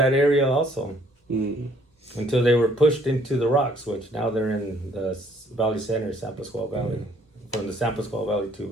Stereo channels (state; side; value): normal; both; correlation 0.62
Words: area also, until they were pushed into the rocks, which now they're in the Valley Center, San Pascual Valley, from the San Pascual Valley to